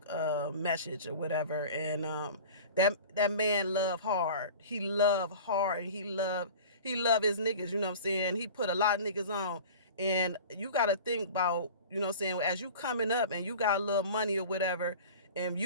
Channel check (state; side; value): inverted; both; correlation -0.38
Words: message or whatever, and that man love hard. He love hard, and he love his niggas. You know what I'm saying? He put a lot of niggas on, and you got to think about, you know what I'm saying, as you coming up and you got a little money or whatever, and